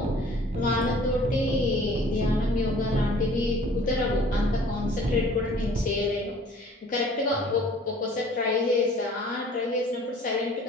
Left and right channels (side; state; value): both; normal; correlation 0.52